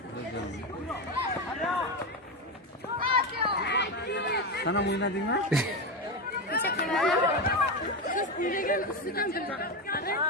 Sana mı oynadın mı?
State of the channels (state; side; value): normal; both; correlation 0.14